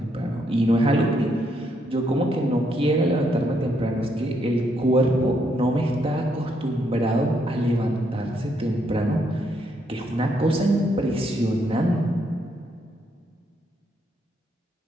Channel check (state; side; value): normal; both; correlation 0.75